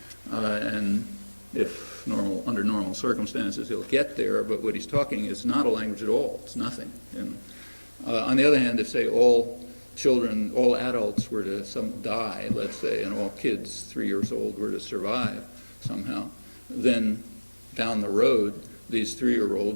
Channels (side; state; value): both; inverted; correlation -1.00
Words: And if under normal circumstances, he'll get there, but what he's talking is not a language at all. It's nothing. On the other hand, if, say, all children, all adults were to die, let's say, and all kids 3 years old were to survive somehow, then down the road, these